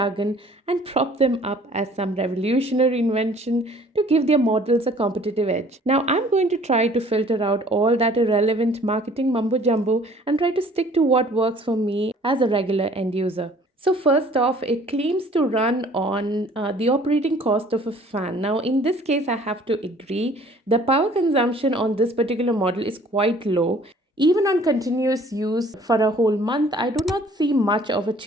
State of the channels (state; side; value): normal; both; correlation 0.54